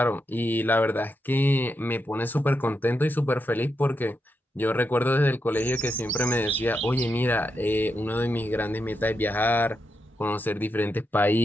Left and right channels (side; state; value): both; normal; correlation 0.84